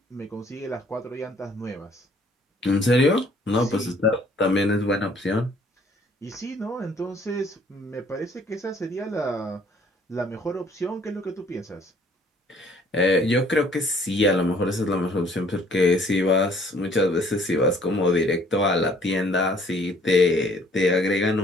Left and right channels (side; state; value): both; normal; correlation 0.59